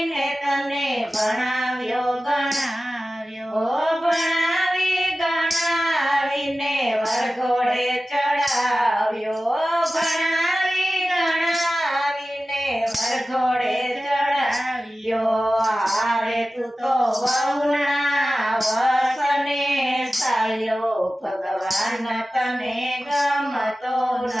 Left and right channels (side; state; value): both; normal; correlation 0.95